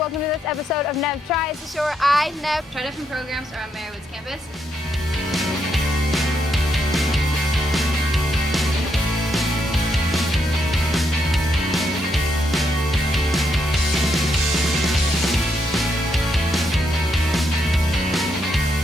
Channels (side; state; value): both; normal; correlation 0.78